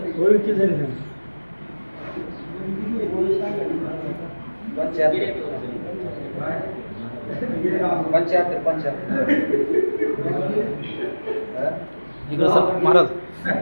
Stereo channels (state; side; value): inverted; both; correlation -1.00